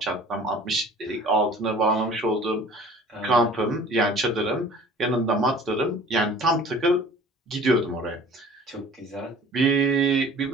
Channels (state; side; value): normal; both; correlation 0.47